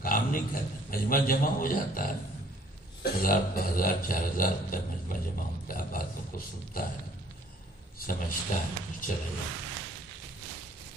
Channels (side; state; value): both; normal; correlation 0.59